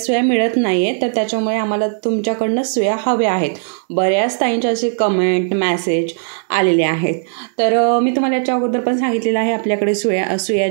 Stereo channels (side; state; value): left; silent; digital silence